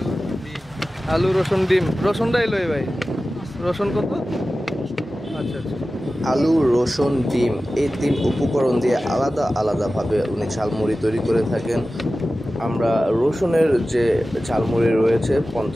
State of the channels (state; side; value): normal; both; correlation 0.95